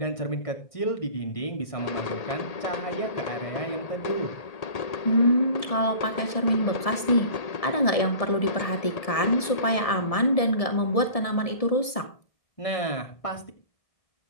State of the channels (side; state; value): right; late; 1.7 ms